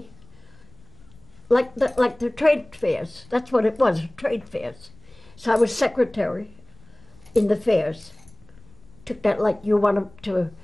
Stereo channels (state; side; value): noise; left; rumble, 26 dB below the sound